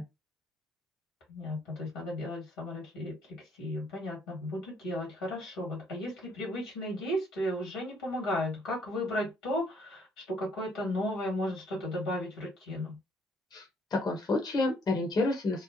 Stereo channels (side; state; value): both; normal; correlation 0.66